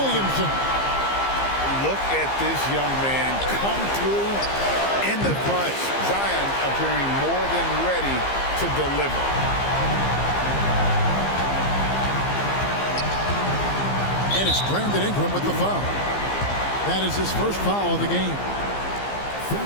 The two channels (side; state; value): right; late; 15 ms